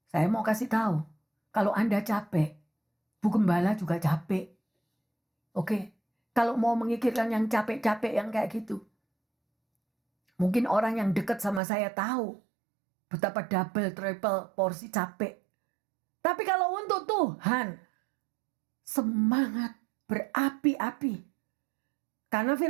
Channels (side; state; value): left; drops out; at 11.6 s